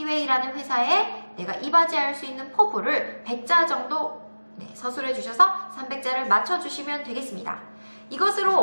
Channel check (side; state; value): both; inverted; correlation -1.00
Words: 회사에 내가 이바지할 수 있는 포부를 100자 정도 서술해 주셔서 300자를 맞춰주시면 되겠습니다.